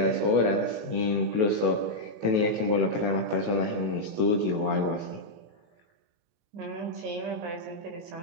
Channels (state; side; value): late; left; 19 ms